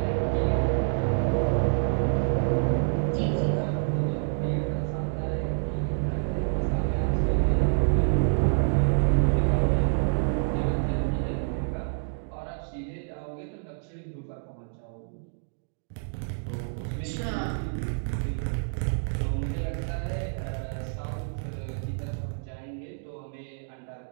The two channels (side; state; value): left; silent; digital silence